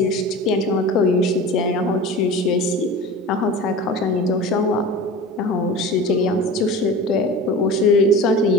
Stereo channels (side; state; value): both; normal; correlation 0.34